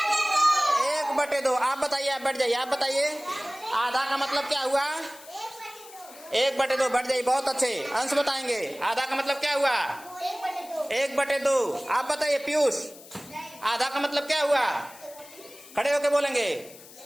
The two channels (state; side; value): noise; left; hiss, 19 dB below the sound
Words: 1/2। आप बताइए, आप बैठ जाइए, आप बताइए आधा का मतलब क्या हुआ? 1/2। बैठ जाइए, बहुत अच्छे अंश बताएंगे। आधा का मतलब क्या हुआ? 1/2। आप बताइए पीयूष, आधा का मतलब क्या हुआ? खड़े होके बोलेंगे,